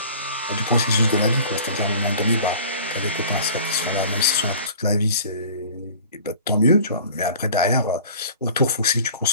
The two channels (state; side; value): inverted; both; correlation -0.45